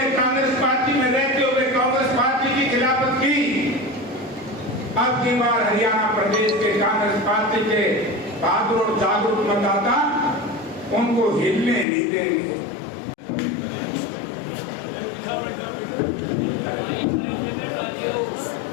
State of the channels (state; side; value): drops out; right; at 11.9 s